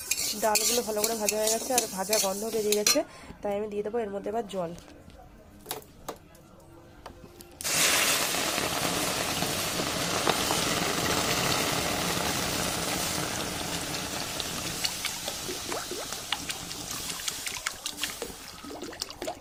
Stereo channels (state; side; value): identical; both; correlation 1.00